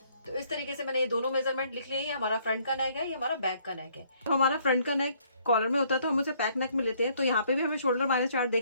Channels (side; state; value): both; inverted; correlation -0.65